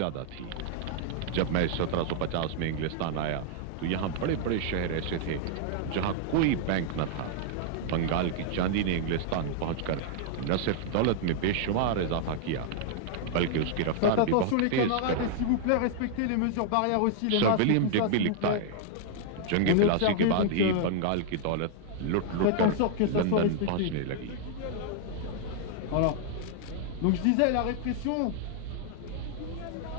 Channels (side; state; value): both; different; correlation -0.01